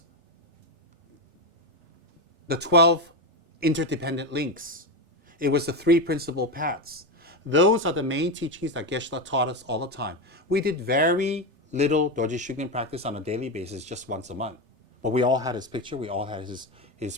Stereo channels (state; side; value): late; left; 3.4 ms